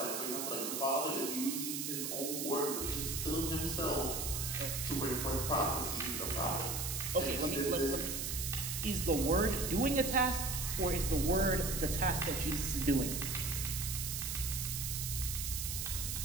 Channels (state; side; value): noise; right; hiss, 3 dB below the sound